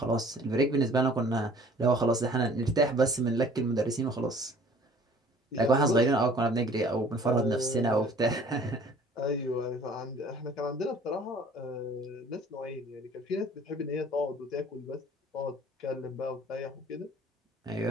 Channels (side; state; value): both; normal; correlation 0.52